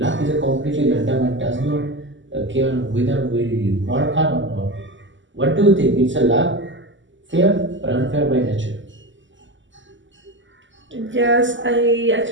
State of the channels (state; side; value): late; left; 0.54 ms